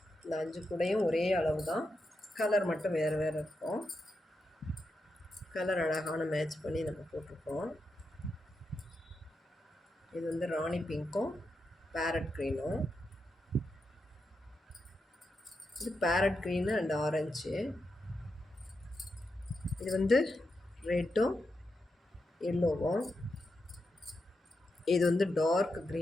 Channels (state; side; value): normal; both; correlation 0.86